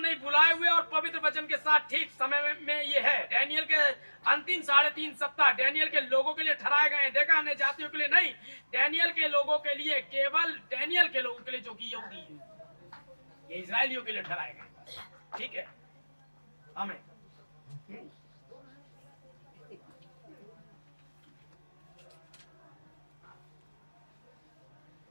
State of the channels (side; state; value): both; inverted; correlation -1.00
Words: नहीं। बुलाए हुए और पवित्र वचन के साथ ठीक समय में ये है। डैनियल के अंतिम 3.5 सप्ताह डैनियल के लोगों के लिए ठहराए गए हैं। देखा, अन्य जातियों के लिए नहीं, डैनियल के लोगों के लिए, केवल डैनियल के लोगों के लिए, जो कि यहूदी है। ये इजराइलियों के लिए ठहराए गए। ठीक है, आमीन।